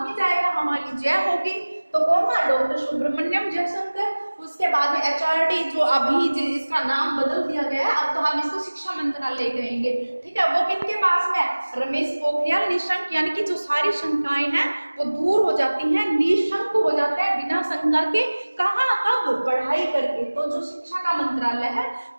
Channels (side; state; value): both; inverted; correlation -1.00